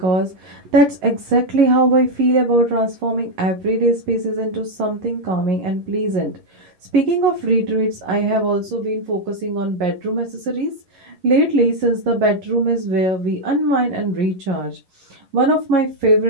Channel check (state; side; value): late; left; 11 ms